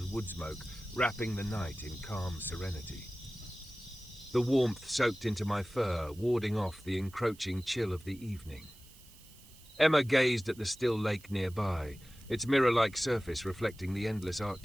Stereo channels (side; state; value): right; noise; hiss, 23 dB below the sound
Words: wood smoke, wrapping the night in calm serenity. The warmth soaked into my fur, warding off the encroaching chill of the evening. Emma gazed at the still lake nearby, its mirror-like surface reflecting the endless